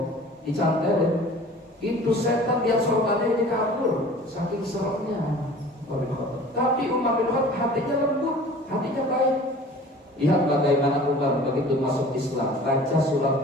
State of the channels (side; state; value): both; normal; correlation 0.45